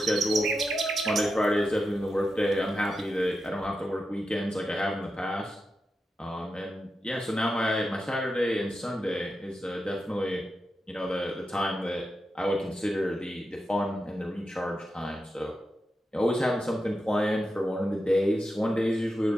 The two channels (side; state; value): both; normal; correlation 0.89